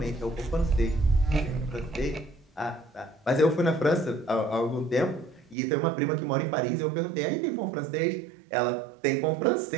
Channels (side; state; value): left; drops out; at 5.6 s